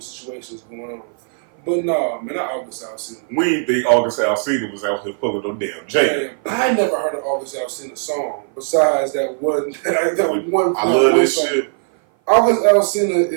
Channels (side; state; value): left; silent; 57 dB below the other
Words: situations going on. But nah, man, not August Alsina. We didn't think August Alsina was out here pulling no damn Jada. I never heard an August Alsina song besides that one. I love this song. Shit. August Alsina